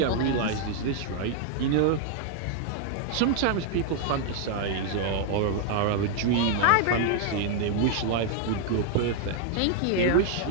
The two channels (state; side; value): different; both; correlation 0.00